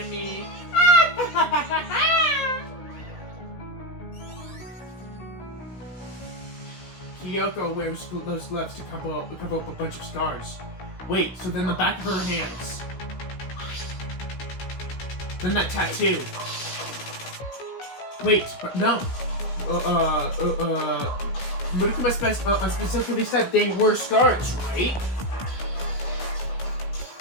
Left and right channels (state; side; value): late; right; 16 ms